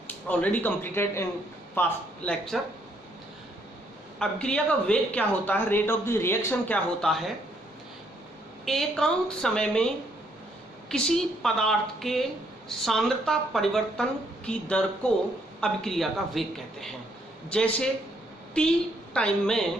already completed in past lecture. अभिक्रिया का वेग क्या होता है, रेट ऑफ द रिएक्शन क्या होता है। एकांक समय में किसी पदार्थ के सांद्रता परिवर्तन की दर को अभिक्रिया का वेग कहते हैं। जैसे t टाइम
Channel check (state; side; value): normal; both; correlation 0.70